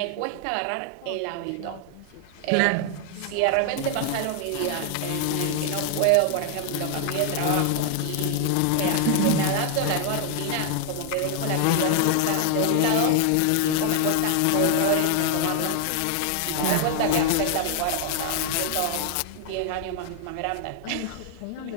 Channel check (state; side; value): different; both; correlation 0.00